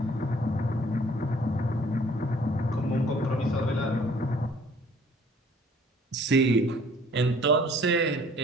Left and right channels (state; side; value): normal; both; correlation 0.56